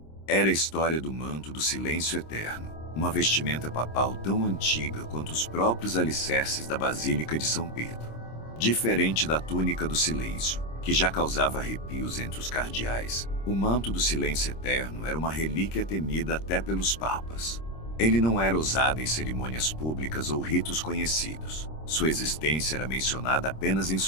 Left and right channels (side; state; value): right; late; 26 ms